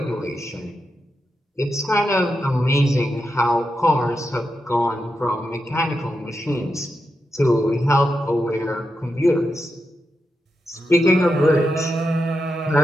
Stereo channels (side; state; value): both; normal; correlation 0.87